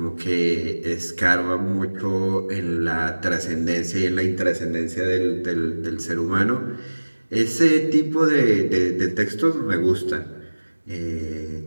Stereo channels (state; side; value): inverted; both; correlation -1.00